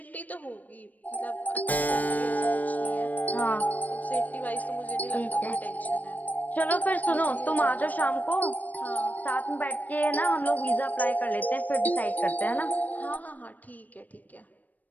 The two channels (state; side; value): late; right; 0.079 ms